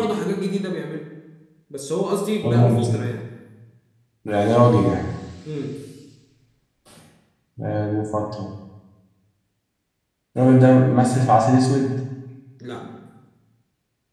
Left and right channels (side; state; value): both; identical; correlation 1.00